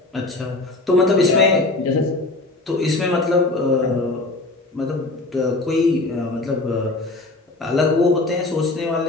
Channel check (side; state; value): right; quieter; 3.0 dB